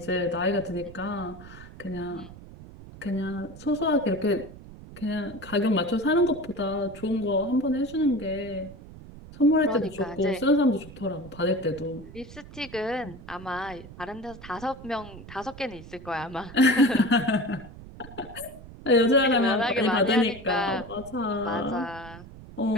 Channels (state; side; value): noise; right; rumble, 16 dB below the sound